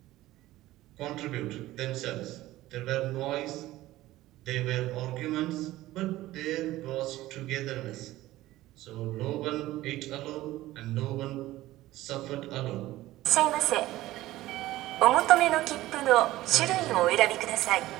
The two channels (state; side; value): quieter; left; 16.4 dB